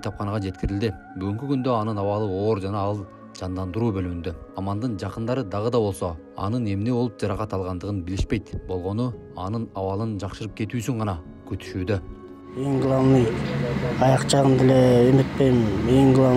жеткирилди. Бүгүнкү күндө анын абалы оор жана ал жандандыруу бөлүмүндө. Амандын жакындары дагы да болсо, анын эмне болуп жаракат алгандыгын билишпейт. Болгону анын абалын жакшырып кетүүсүн гана күтүшүүдө. Эң главный аяк жагын деле эметпейм. Эң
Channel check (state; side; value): identical; both; correlation 1.00